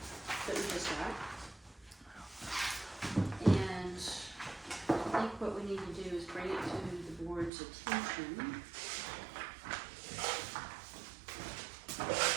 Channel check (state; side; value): drops out; left; at 7.5 s